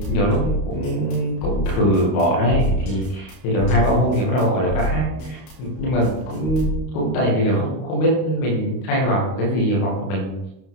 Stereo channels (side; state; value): right; late; 32 ms